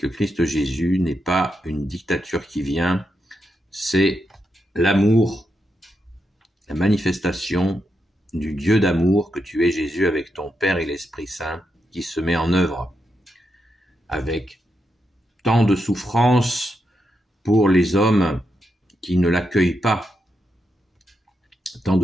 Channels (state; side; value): normal; both; correlation 0.84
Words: Jésus n'est pas une dictature qui vient, c'est l'amour, la manifestation du Dieu d'amour que tu es Jésus avec ton Père et l'Esprit Saint qui se met en œuvre avec tant de souffrance pour les hommes qui ne l'accueillent pas, tant